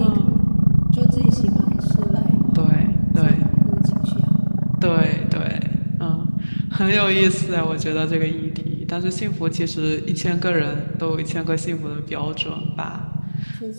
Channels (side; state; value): both; inverted; correlation -1.00